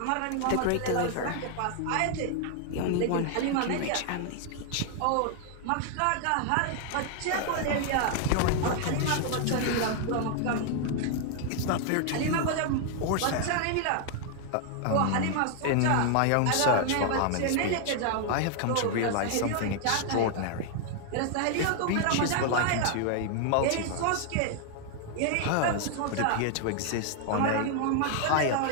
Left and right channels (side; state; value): both; different; correlation 0.00